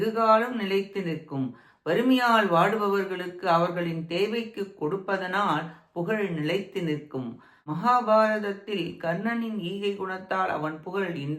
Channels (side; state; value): both; identical; correlation 1.00